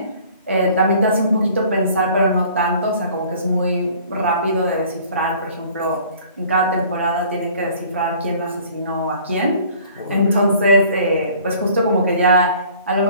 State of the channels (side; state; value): both; inverted; correlation -0.52